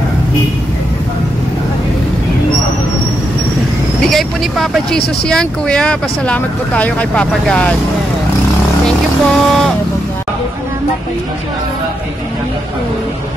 Bigay po ni Papa Jesus yan, Kuya. Pasalamat po tayo kay Papa God. Thank you po.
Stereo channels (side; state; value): both; normal; correlation 0.82